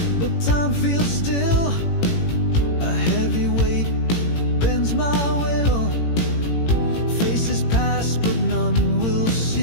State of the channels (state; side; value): late; right; 18 ms